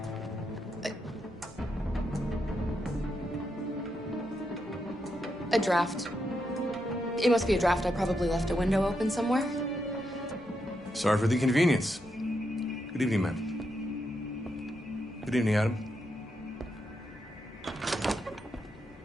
A draft. It must be a draft. I probably left a window open somewhere. Sorry for the inconvenience. Good evening, ma'am. Good evening, Adam.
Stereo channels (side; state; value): both; normal; correlation 0.83